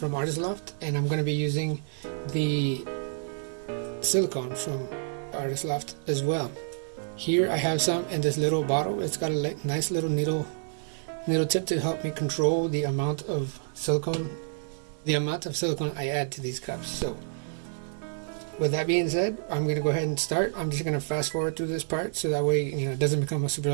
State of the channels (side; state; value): left; silent; 59 dB below the other